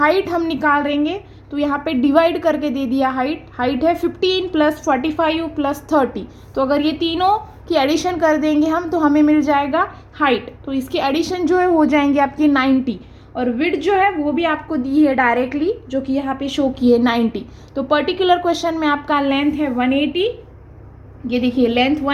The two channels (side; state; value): both; identical; correlation 1.00